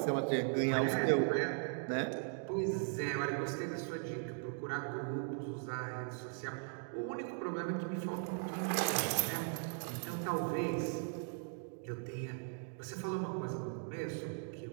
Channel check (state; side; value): silent; left; 52 dB below the other